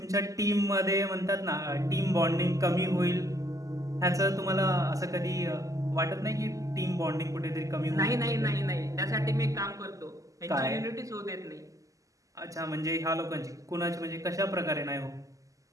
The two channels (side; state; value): left; late; 0.16 ms